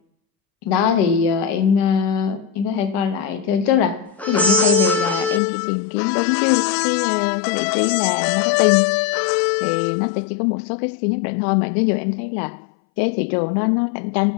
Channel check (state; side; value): drops out; right; at 5.4 s